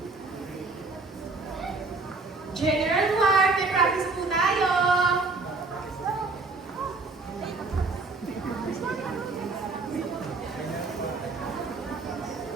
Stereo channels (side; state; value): left; quieter; 3.8 dB